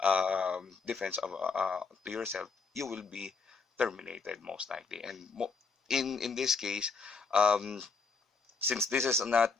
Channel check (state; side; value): quieter; right; 4.7 dB